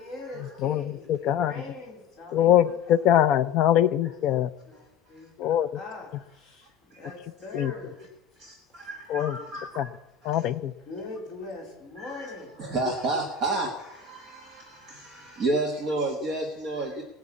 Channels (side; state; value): right; quieter; 6.7 dB